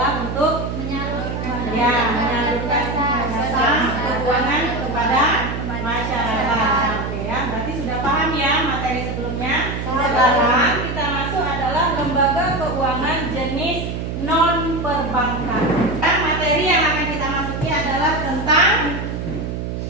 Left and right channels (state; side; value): noise; right; hum, 4 dB below the sound